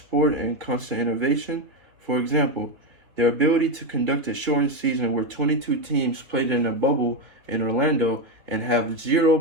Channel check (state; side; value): late; left; 3.1 ms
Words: in constant innovation. For example, their ability to conduct a shortened season where 22 teams played in a bubble in Orlando and have 0